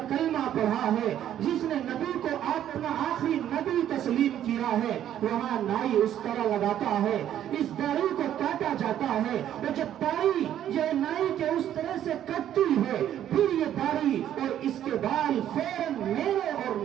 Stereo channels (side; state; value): left; quieter; 11.0 dB